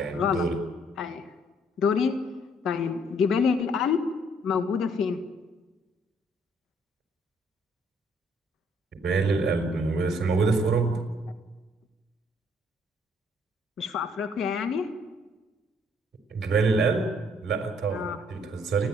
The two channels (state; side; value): normal; both; correlation 0.65